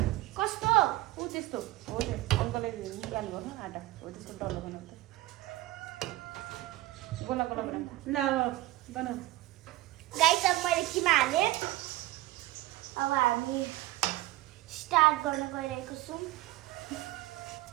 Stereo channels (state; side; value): quieter; left; 17.5 dB